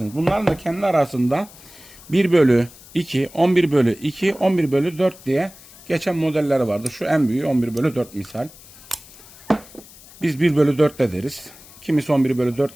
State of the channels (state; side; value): noise; left; hiss, 21 dB below the sound